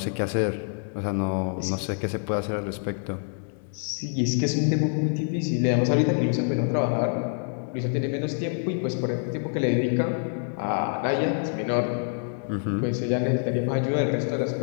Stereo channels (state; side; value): silent; right; 61 dB below the other